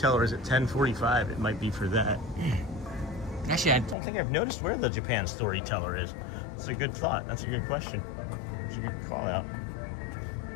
is at 10:45. It might be for that. Actually, I don't think I've noticed where the Japan Storyteller is. That's a good thought. That's a good question. That's a good call out.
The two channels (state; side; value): drops out; right; at 4.0 s